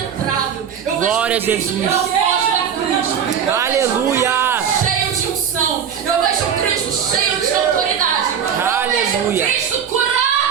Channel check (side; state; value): left; quieter; 8.0 dB